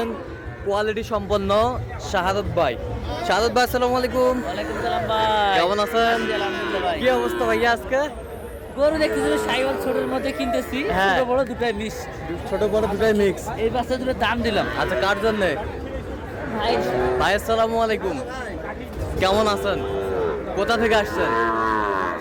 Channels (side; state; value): both; identical; correlation 1.00